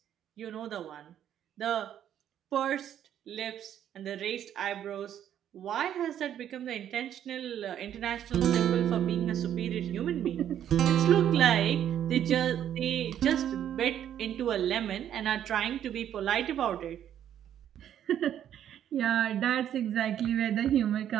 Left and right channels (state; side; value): quieter; left; 10.3 dB